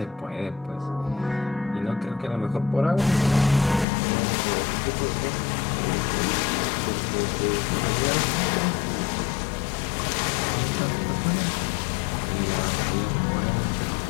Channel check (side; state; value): right; drops out; at 3.9 s